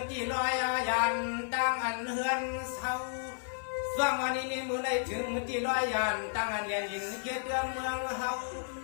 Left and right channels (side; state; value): right; silent; digital silence